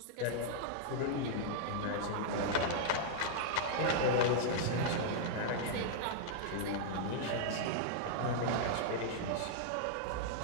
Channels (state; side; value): different; both; correlation -0.01